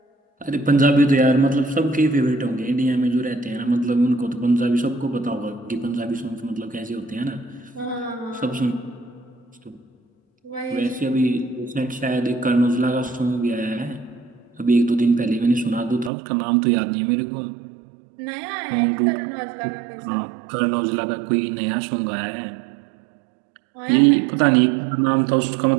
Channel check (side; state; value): left; drops out; at 16.1 s